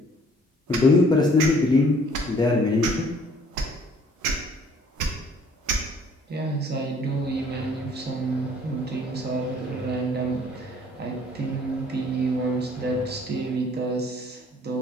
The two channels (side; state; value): both; normal; correlation 0.57